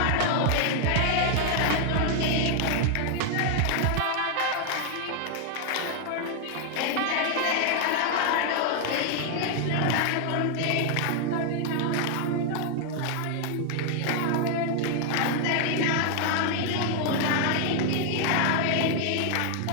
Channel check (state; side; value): different; both; correlation 0.00